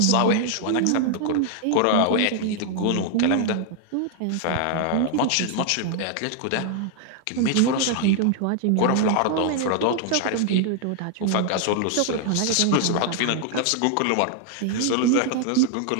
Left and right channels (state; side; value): different; both; correlation 0.00